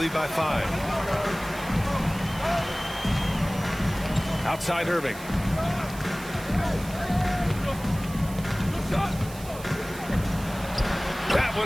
by 5. Outside Irving. That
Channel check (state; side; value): noise; right; hiss, 16 dB below the sound